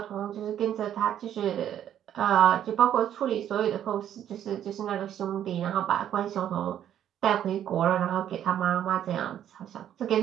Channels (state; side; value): quieter; left; 10.5 dB